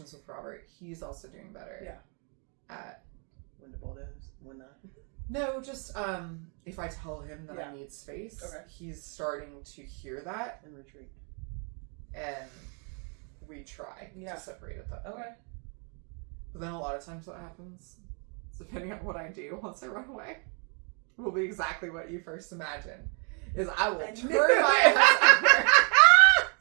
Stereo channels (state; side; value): quieter; left; 38.3 dB